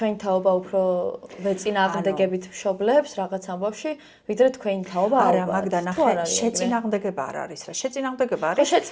თაობა უფრო ვეწინააღმდეგებით მშობლებს რაღაც ამბავში ვიდრე თქვენი თაობა არა მაგდა ნახე შეწინააღმდეგება არ არის რა შეწინააღმდეგება არის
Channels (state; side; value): identical; both; correlation 1.00